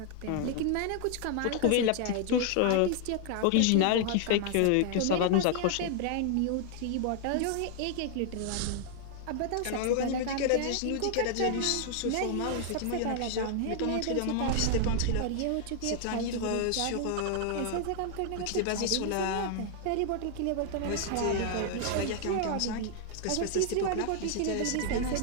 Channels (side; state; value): both; different; correlation 0.00